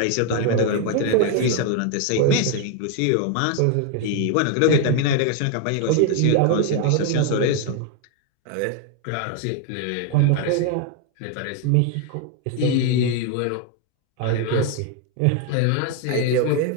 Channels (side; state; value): both; different; correlation 0.01